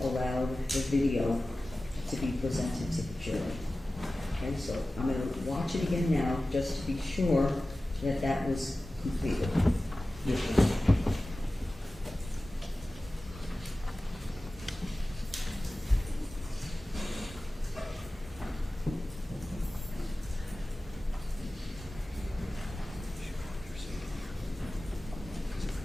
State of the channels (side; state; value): both; normal; correlation 0.96